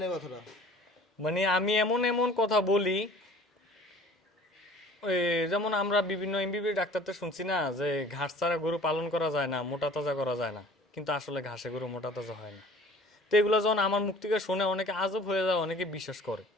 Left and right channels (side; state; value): both; normal; correlation 0.48